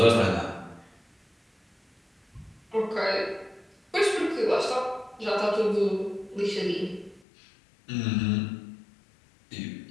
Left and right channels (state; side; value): drops out; right; at 7.2 s